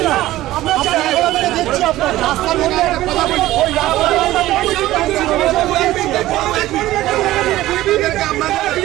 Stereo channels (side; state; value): left; quieter; 15.7 dB